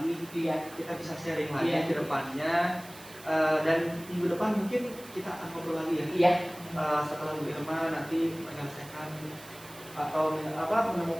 Iya. kita bisa sharing lagi Iya. ke depannya. Dan minggu depan mungkin kita akan ngobrol lagi ya. Iya. Setelah Bu Irma nanti menyelesaikan atau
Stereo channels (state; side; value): noise; right; hiss, 18 dB below the sound